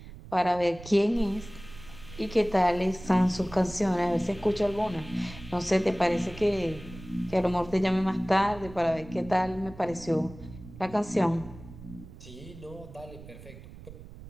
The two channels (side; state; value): right; noise; rumble, 16 dB below the sound